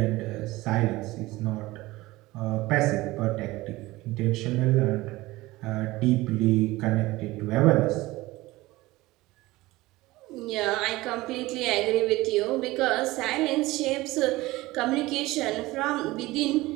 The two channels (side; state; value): left; quieter; 19.4 dB